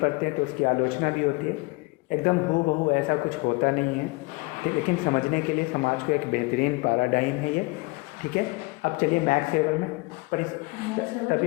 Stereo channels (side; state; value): right; quieter; 25.4 dB